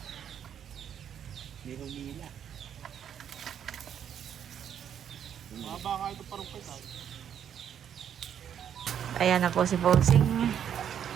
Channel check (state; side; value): quieter; left; 9.0 dB